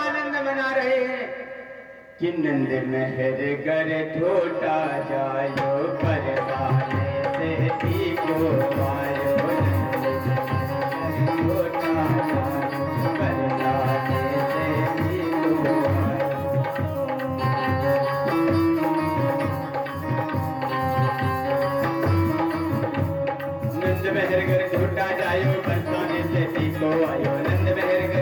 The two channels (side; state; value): both; identical; correlation 1.00